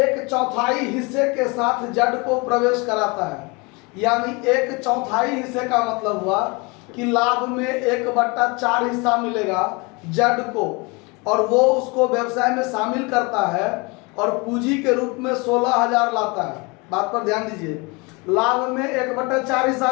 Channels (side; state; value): right; quieter; 27.9 dB